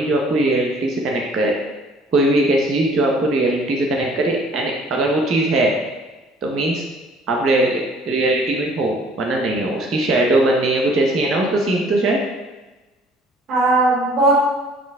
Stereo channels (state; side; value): normal; both; correlation 0.55